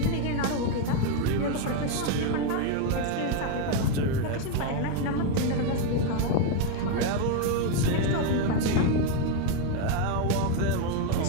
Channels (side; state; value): both; different; correlation 0.01